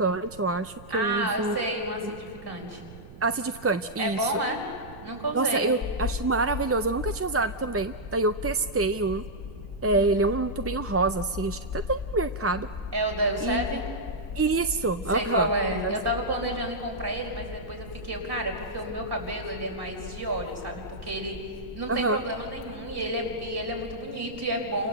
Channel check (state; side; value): noise; right; rumble, 17 dB below the sound